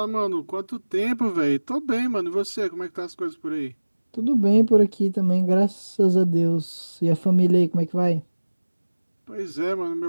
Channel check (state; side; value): inverted; both; correlation -1.00